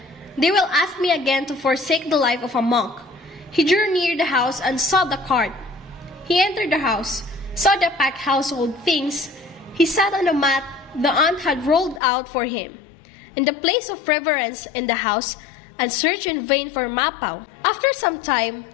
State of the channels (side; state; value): right; drops out; at 12.0 s